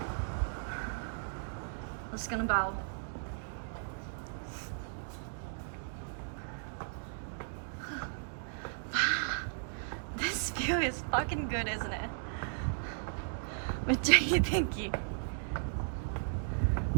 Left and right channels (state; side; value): silent; left; digital silence